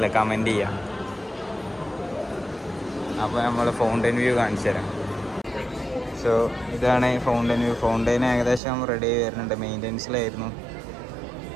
കമൻറ്റ് ചെയ്യാം. അപ്പോൾ നമ്മൾ ഫൗണ്ടെയിൻ വ്യൂ കാണിച്ചു തരാം. സോ ഇതാണ് ഫൗണ്ടെയിൻ വ്യൂ. ഫൗണ്ടെയിൻ ഏകദേശം റെഡി ആയി വരുന്നുണ്ട്. മെയിൻ്റെനൻസിലായിരുന്നു,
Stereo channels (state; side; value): drops out; left; at 8.6 s